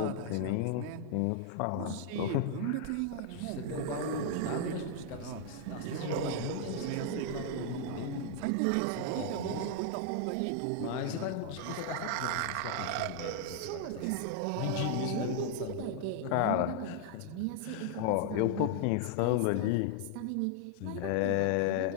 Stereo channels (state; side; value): different; both; correlation 0.00